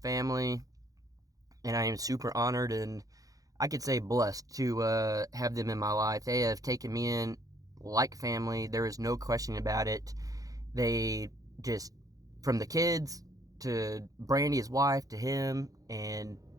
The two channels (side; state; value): left; late; 0.17 ms